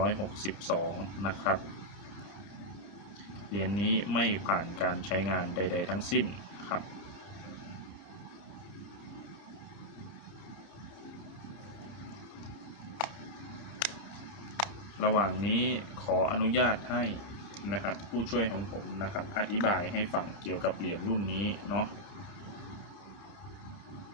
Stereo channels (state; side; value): late; right; 30 ms